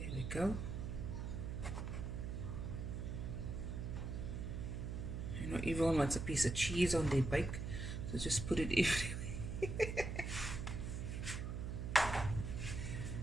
we go. You know, everyone wants a piece of cheese on their bake, so just put it everywhere.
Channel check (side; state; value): right; noise; hum, 3 dB below the sound